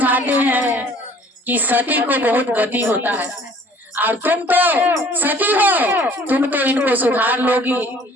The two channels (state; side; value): normal; both; correlation 0.53